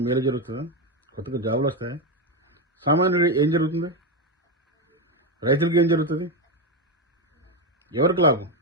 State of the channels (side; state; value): both; normal; correlation 0.10